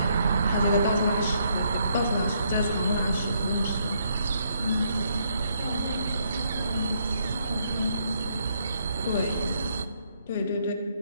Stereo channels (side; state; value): both; inverted; correlation -0.72